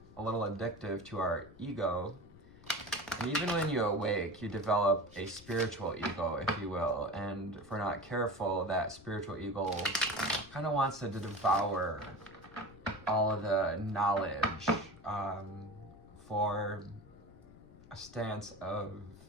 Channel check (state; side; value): noise; left; rumble, 21 dB below the sound